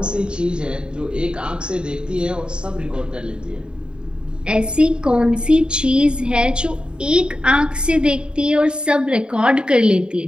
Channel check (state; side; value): late; left; 0.051 ms